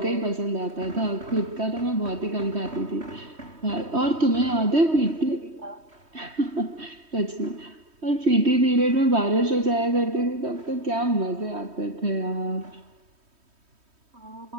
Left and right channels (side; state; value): left; late; 3.2 ms